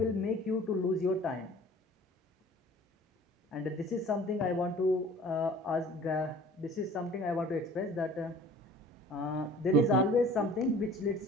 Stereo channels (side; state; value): both; normal; correlation 0.48